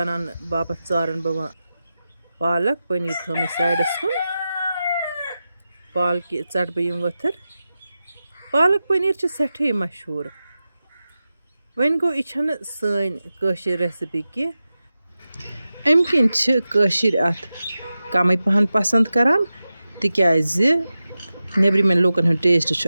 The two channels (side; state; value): both; inverted; correlation -0.93